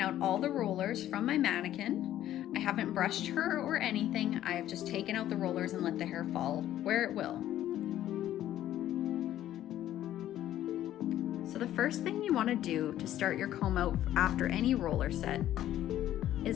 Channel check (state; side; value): quieter; right; 12.5 dB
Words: out all the rollers from my mannequin. I haven't brushed her or anything. I have just taken out the rollers and let the hair fall where it will. So the first thing you want to do to start your comb out after any roller set